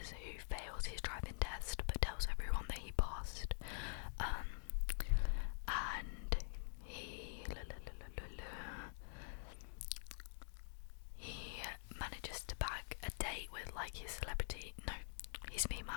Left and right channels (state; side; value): silent; right; digital silence